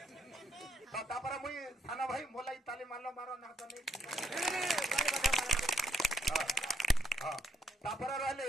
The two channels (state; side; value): normal; both; correlation 0.74